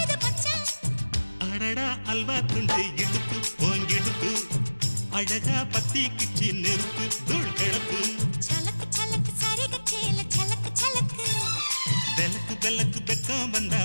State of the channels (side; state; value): both; inverted; correlation -1.00